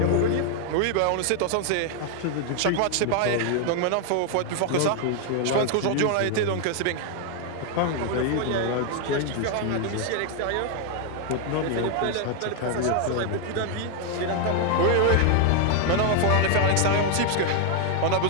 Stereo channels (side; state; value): both; different; correlation 0.00